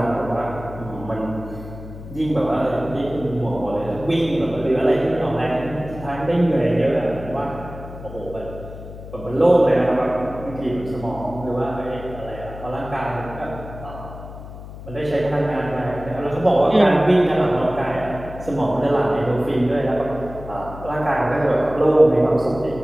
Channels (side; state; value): left; noise; hum, 13 dB below the sound